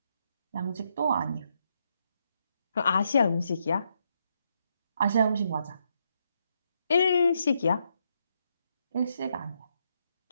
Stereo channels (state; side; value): inverted; both; correlation -0.78